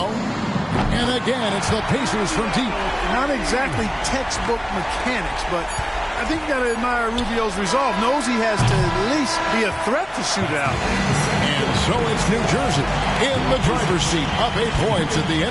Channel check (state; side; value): identical; both; correlation 1.00